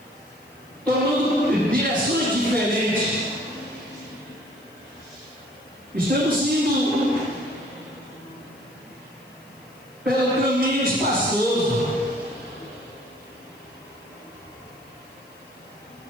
tomando direções diferentes. Estamos indo pelo caminho espaçoso.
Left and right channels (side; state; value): left; noise; hiss, 28 dB below the sound